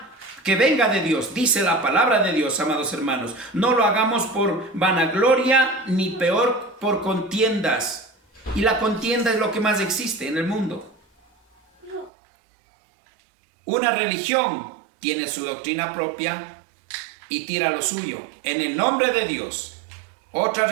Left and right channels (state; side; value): drops out; left; at 12.1 s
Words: venga de Dios. Dice la palabra de Dios, amados hermanos. No lo hagamos por vanagloria, ni peor por contiendas. Y la contienda es lo que más existe en el mundo. Una religión tiene su doctrina propia y tira lo suyo en el nombre de Dios. Otra